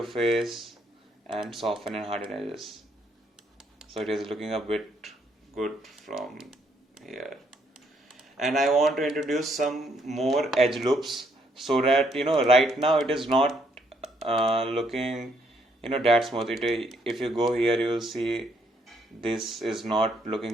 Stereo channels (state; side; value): normal; both; correlation 0.71